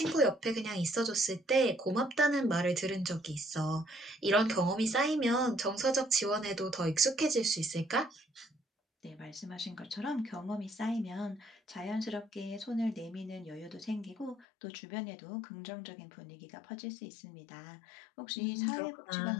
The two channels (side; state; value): right; drops out; at 14.5 s